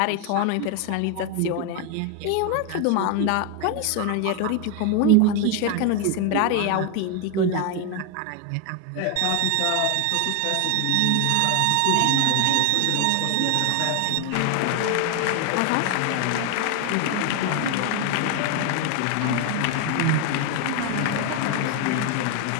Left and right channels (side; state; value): both; different; correlation 0.01